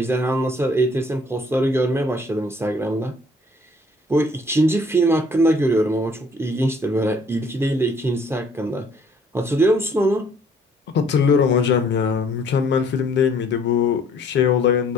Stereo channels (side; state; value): both; normal; correlation 0.60